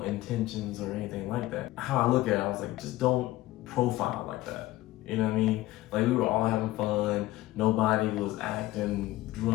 intentions or anything like that. How I look at it, I was like, just don't profile like that. You know what I mean? Like, we were all having fun. Nobody was acting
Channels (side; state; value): right; quieter; 16.8 dB